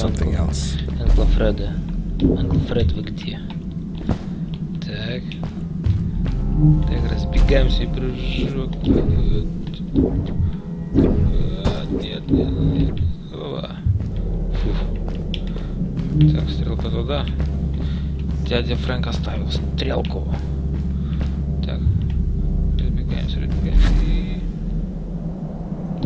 else? Анкл Фред, вы где? Так. Так, разбегаемся и прыжок. Нет. Так, стрелка туда. Дядя Фрэнк оставил стрелку. Так. Разбегаемся.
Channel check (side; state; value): both; identical; correlation 1.00